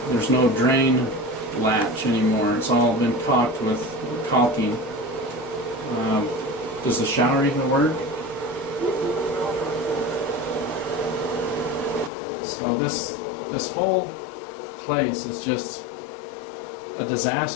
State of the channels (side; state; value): right; drops out; at 12.1 s